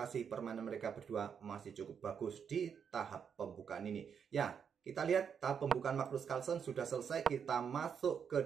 permainan mereka berdua masih cukup bagus di tahap pembukaan ini. Ya, kita lihat tahap pembukaan Magnus Carlsen sudah selesai. Kita masuk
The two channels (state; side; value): quieter; left; 7.2 dB